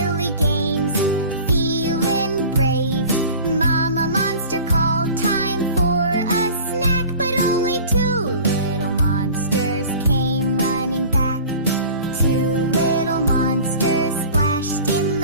games, feeling brave. Mama Monster called, time for a snack, but only 2 little monsters came running back. 2 little monsters splashed in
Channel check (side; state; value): both; inverted; correlation -0.41